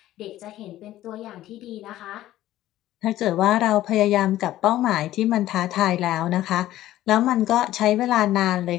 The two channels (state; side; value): quieter; right; 14.2 dB